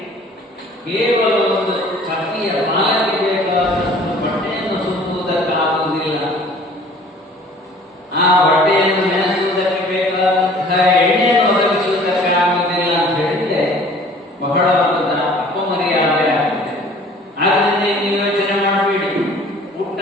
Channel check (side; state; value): both; normal; correlation 0.51